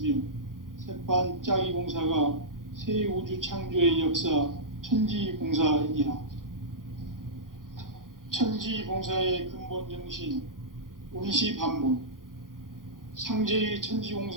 새판짜기 공사가 새 우주 창조의 역사 천지공사이니라. 천지공사의 근본 정신, 운시반본. 상제의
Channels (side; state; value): left; late; 0.90 ms